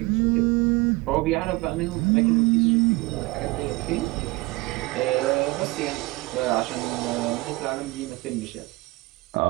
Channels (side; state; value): left; quieter; 22.6 dB